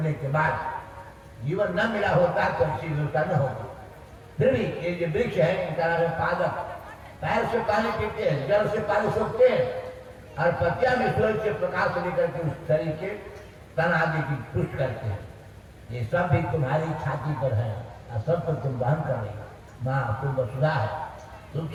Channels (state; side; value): identical; both; correlation 1.00